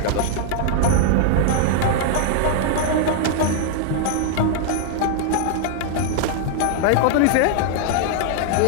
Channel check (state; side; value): different; both; correlation 0.00